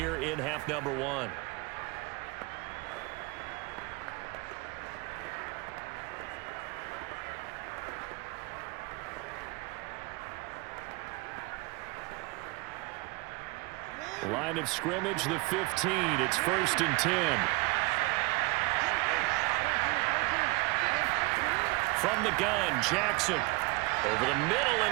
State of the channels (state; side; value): quieter; left; 24.2 dB